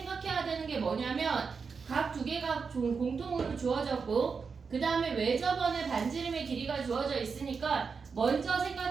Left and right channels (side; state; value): left; quieter; 5.4 dB